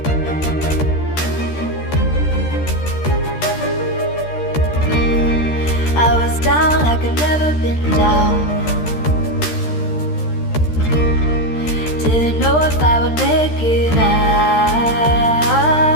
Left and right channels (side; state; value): right; late; 13 ms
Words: I was down like I've never been down. Didn't know if I would make it out.